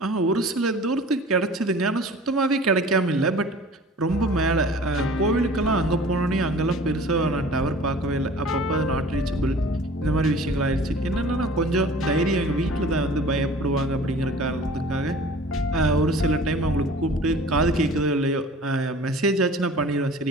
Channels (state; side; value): normal; both; correlation 0.45